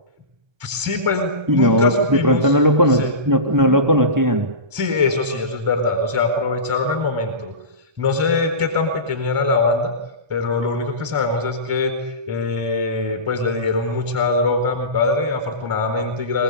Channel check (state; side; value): late; left; 1.3 ms